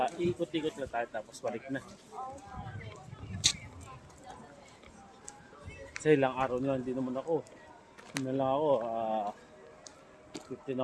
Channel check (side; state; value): both; identical; correlation 1.00